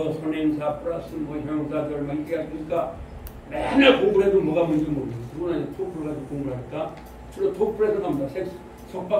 선행사 플러스 뭐 형사들 막 이렇게 가르치니까 맨날 공부를 해도 뭐가 뭔지 모르겠어요. 그거는 토플 가지고 공부를 하니까 주로 토플에서 나옵니다.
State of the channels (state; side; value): identical; both; correlation 1.00